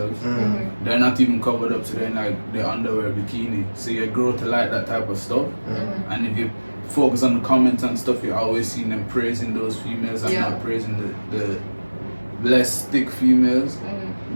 Mm, They're not even covered up to their their underwear, bikini. So you grow to like that type of stuff. mm. And if you focus on the comments and stuff, you're always seeing them praising those females and Yeah. not praising the less thick females.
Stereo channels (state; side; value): inverted; both; correlation -1.00